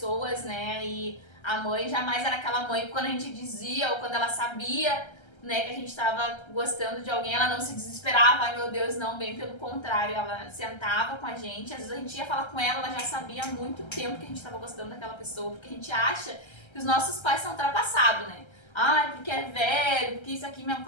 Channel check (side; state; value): right; late; 1.3 ms